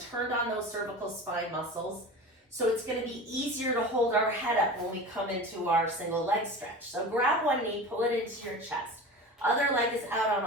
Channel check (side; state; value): both; normal; correlation 0.33